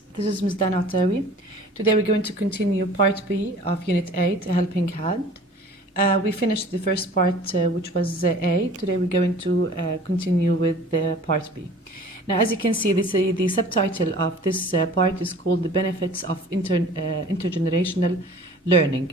this is Ms. Dana Etaiwi. Today we're going to continue part B of Unit 8, A Helping Hand. We finished the first part which was A. Today we're going to continue with part B. Now as you can see, the subtitle of this part is called The Benefits of Intergenerational Learning.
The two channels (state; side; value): normal; both; correlation 0.46